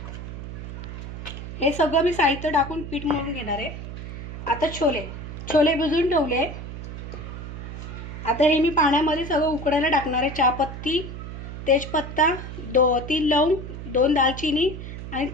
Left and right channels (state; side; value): noise; right; hum, 9 dB below the sound